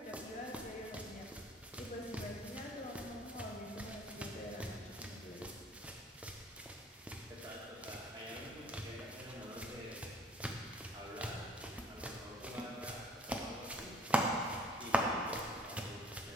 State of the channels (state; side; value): normal; both; correlation 0.54